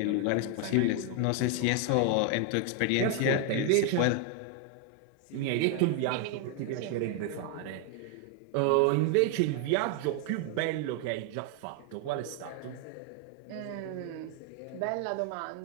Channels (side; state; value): both; different; correlation 0.00